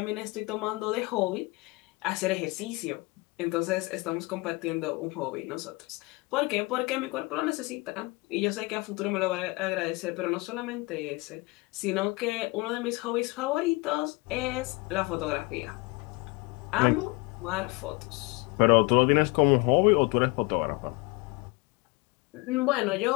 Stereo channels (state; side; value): quieter; right; 25.4 dB